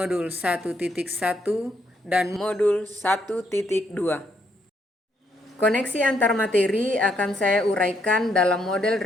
1.1 dan modul 1.2. Koneksi antar materi akan saya uraikan dalam model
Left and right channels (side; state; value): both; normal; correlation 0.74